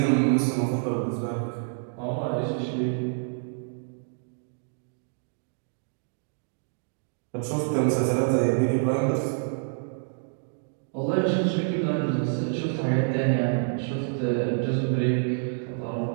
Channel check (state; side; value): silent; left; digital silence